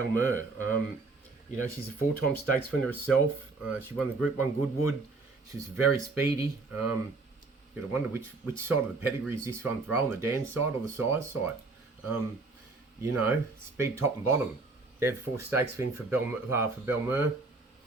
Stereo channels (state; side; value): quieter; left; 3.7 dB